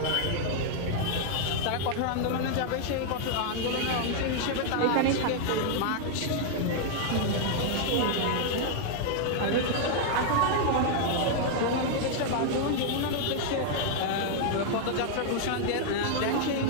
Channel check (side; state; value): both; different; correlation 0.00